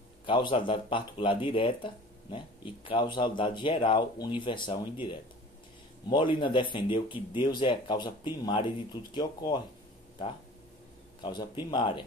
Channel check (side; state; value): both; normal; correlation 0.43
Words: causalidade particular direta, né, e causalidade geral, universal ou indireta. Molina defendeu que Deus é a causa primária de tudo que ocorre, tá? Causa primária